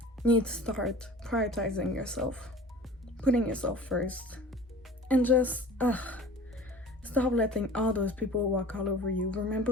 You need to start prioritizing yourself. Putting yourself first. And just, stop letting all those people walk all over you.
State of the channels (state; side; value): normal; both; correlation 0.42